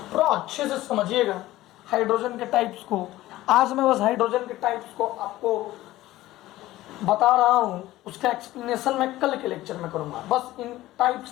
थोड़ा अच्छे से समझिएगा हाइड्रोजन के टाइप्स को। आज मैं बस हाइड्रोजन के टाइप्स को आपको बता रहा हूं, उसका एक्सप्लेनेशन मैं कल के लेक्चर में करूंगा। बस इन टाइप्स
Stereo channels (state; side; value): quieter; right; 16.2 dB